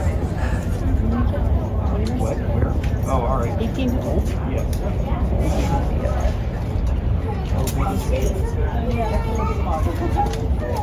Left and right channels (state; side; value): identical; both; correlation 1.00